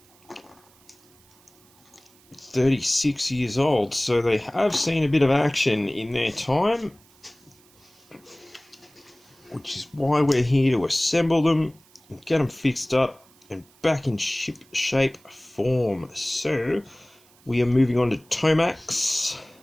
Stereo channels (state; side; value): noise; right; hiss, 30 dB below the sound